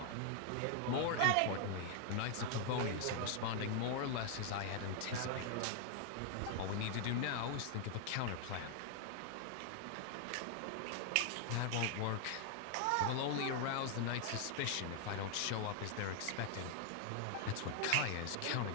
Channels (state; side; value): different; both; correlation 0.00